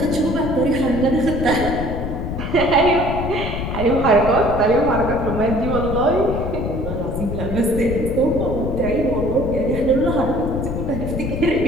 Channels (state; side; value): noise; left; rumble, 4 dB below the sound